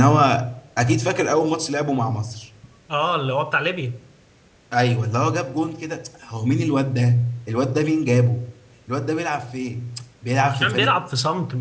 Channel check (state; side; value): identical; both; correlation 1.00